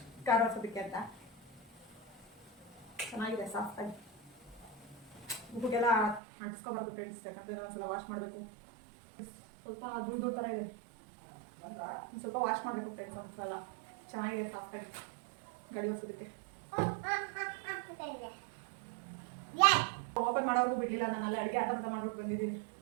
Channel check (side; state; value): left; drops out; at 6.2 s